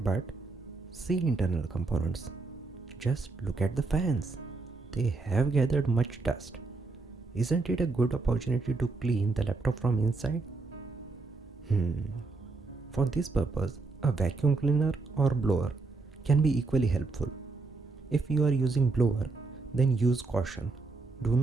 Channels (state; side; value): quieter; left; 3.8 dB